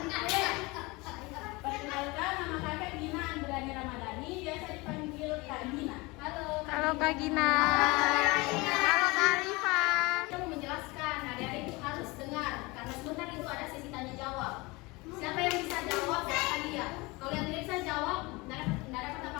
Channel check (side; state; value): right; quieter; 24.3 dB